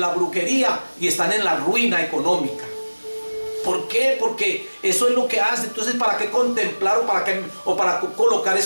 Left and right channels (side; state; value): both; inverted; correlation -1.00